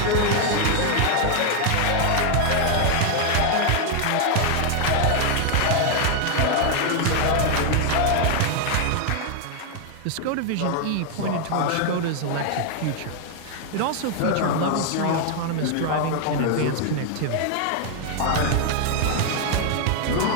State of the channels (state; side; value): different; both; correlation 0.00